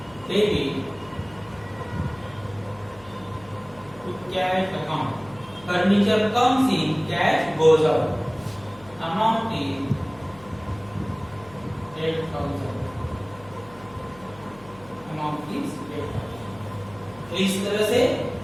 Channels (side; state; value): left; noise; hum, 23 dB below the sound